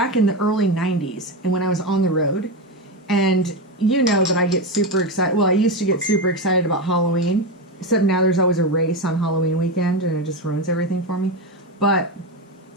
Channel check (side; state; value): both; normal; correlation 0.15